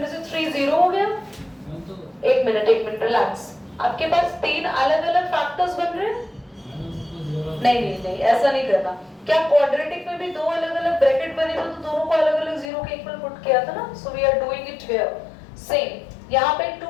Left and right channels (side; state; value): right; drops out; at 12.7 s